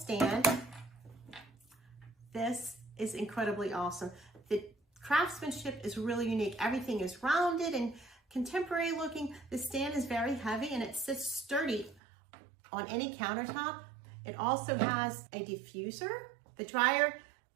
This is incredibly awesome. The craftsmanship is really unique. Everything is rounded and contemporary looking. The stand is very heavy and it sits sturdy on any countertop. It also has a diffuser, the dryer,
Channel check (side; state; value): left; drops out; at 12.0 s